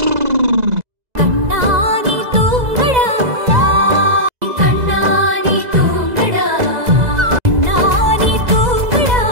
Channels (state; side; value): late; left; 2.0 ms